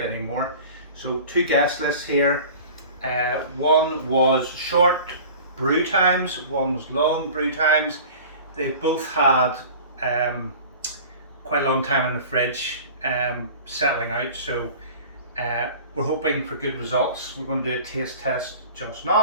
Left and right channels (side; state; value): both; inverted; correlation -0.41